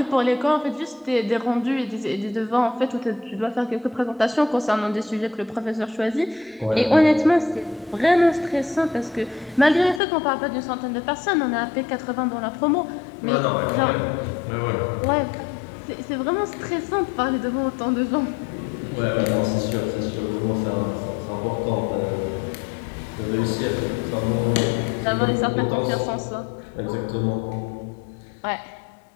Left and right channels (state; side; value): drops out; right; at 10.0 s